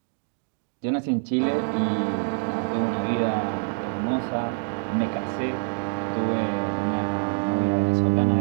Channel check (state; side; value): silent; left; digital silence